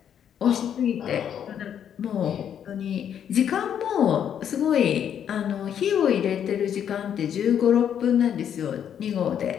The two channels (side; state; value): right; quieter; 9.0 dB